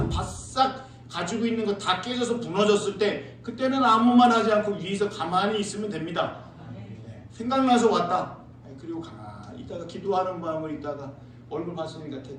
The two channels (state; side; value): identical; both; correlation 1.00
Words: 바싹 가지고 있는 거 다 깨져서 무너졌을 때 그때는 아무 말 하지 않고 위에서 가만히 있으면 됩니다. 네. 생각나서 왔다. 네. 그리고 가만히 있다가 기도하는 마음을 있다가 얼굴 봤으니까